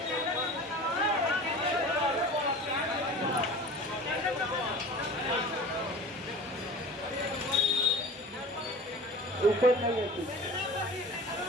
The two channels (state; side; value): normal; both; correlation 0.39